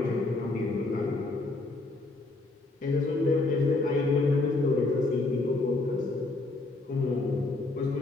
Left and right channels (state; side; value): quieter; right; 3.1 dB